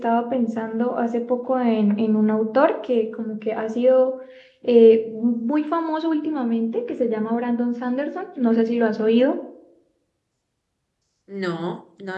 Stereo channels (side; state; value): both; identical; correlation 1.00